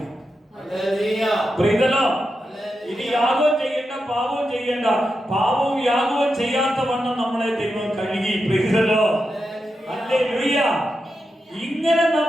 ഇനി യാഗവും ചെയ്യേണ്ട, പാപവും ചെയ്യേണ്ട. പാപവും യാഗവും ചെയ്യാത്ത വണ്ണം നമ്മളെ ദൈവം കഴുകി. ഹല്ലേലൂയ. ഇങ്ങനെ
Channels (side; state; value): both; normal; correlation 0.88